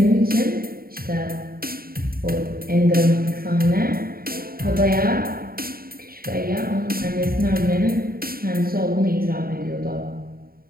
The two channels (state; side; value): late; left; 0.43 ms